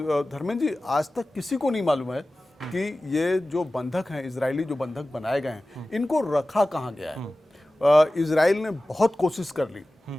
धर्मेंद्र जी, आज तक किसी को नहीं मालूम है कि ये जो बंधक हैं, इजरायली जो बंधक बनाए गए हैं, इनको रखा कहाँ गया है। इजराइल ने बहुत कोशिश कर ली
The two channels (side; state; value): both; normal; correlation 0.96